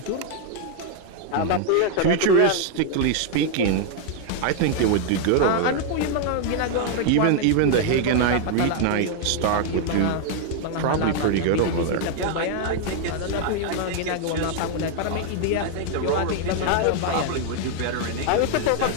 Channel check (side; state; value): both; different; correlation 0.00